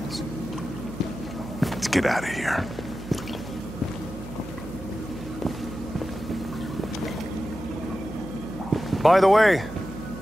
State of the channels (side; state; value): right; noise; hum, 13 dB below the sound